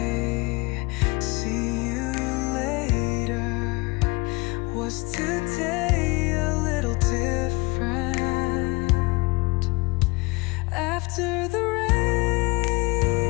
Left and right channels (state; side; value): quieter; right; 25.6 dB